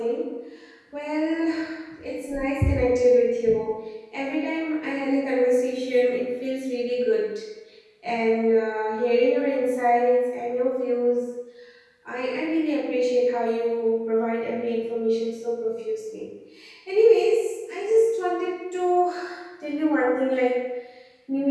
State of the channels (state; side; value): identical; both; correlation 1.00